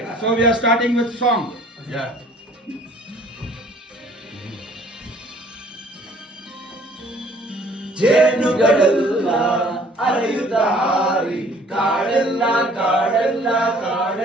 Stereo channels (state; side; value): normal; both; correlation 0.55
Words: So we are starting with song. Yeah. ಜೇನುಗಳೆಲ್ಲ ಅರೆಯುತ್ತ ಹಾರಿ ಕಾಡೆಲ್ಲ ಕಾಡೆಲ್ಲ